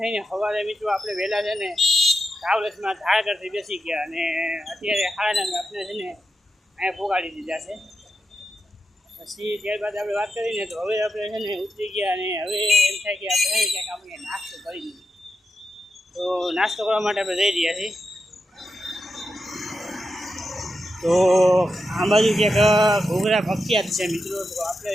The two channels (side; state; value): both; normal; correlation 0.87